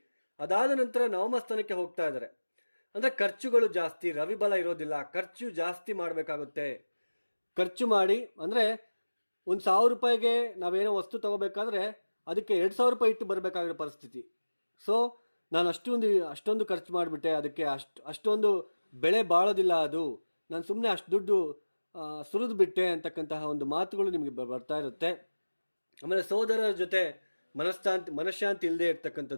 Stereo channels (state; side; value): inverted; both; correlation -1.00